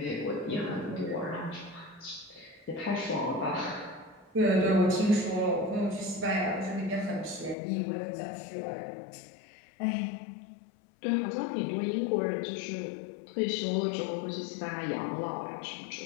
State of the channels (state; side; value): drops out; right; at 7.6 s